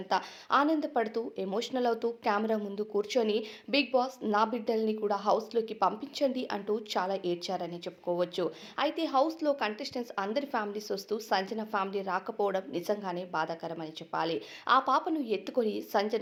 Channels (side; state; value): both; identical; correlation 1.00